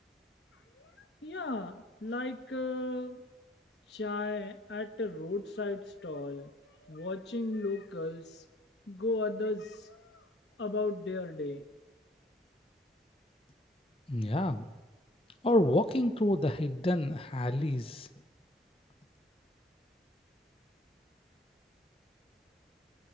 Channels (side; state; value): both; normal; correlation 0.59